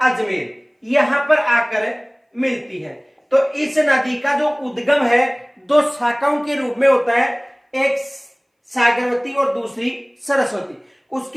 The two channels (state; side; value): identical; both; correlation 1.00